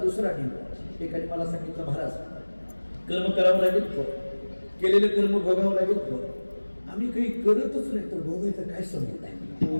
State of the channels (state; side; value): inverted; both; correlation -1.00